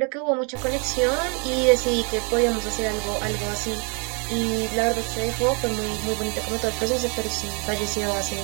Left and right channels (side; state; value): left; quieter; 34.6 dB